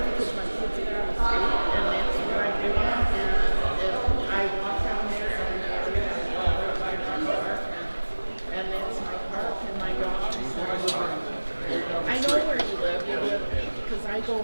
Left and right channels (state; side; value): inverted; both; correlation -1.00